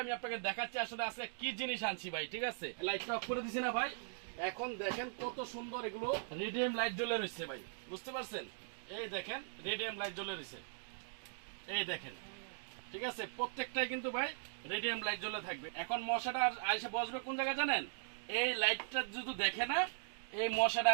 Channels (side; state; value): left; silent; digital silence